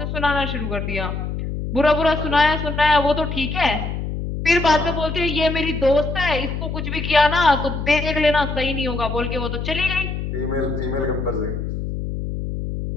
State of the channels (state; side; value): noise; left; hum, 4 dB below the sound